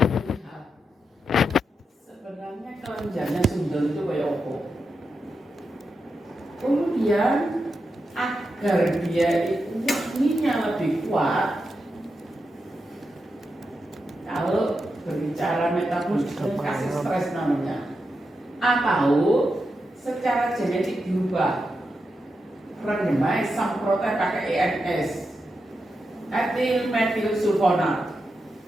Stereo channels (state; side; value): normal; both; correlation 0.87